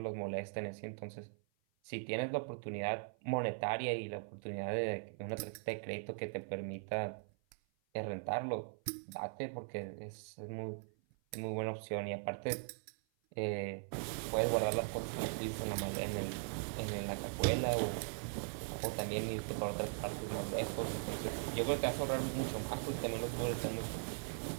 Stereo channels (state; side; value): silent; left; 51 dB below the other